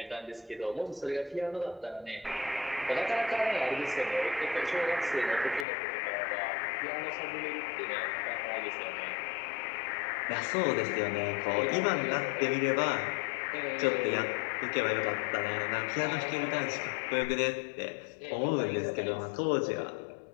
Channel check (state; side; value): drops out; right; at 5.7 s